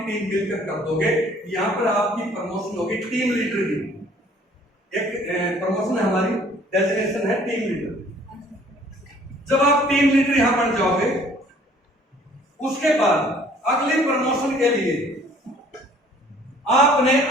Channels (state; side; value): normal; both; correlation 0.56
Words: मिलकर कर दोगे, यहां पर आपकी प्रमोशन होगी टीम लीडर की, एक प्रमोशन है हमारी, डेजिग्नेशन है टीम लीडर। जब आप टीम लीडर यहां बन जाओगे, उसके बाद अगली प्रमोशन के लिए आपने